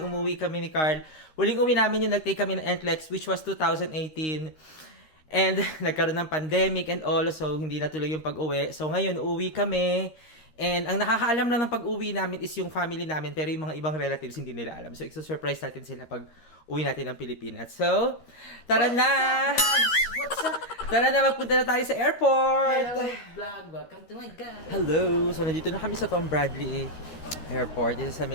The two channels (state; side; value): late; right; 13 ms